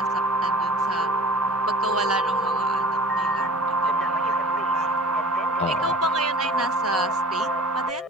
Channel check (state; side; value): normal; both; correlation 0.43